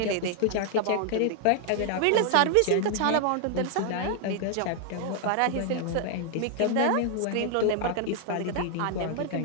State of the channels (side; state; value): both; different; correlation 0.00